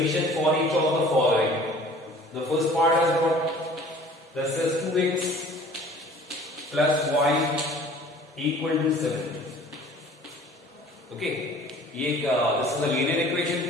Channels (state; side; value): normal; both; correlation 0.48